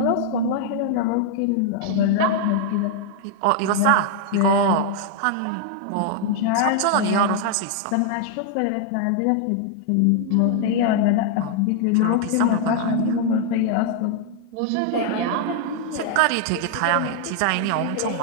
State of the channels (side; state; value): both; different; correlation 0.00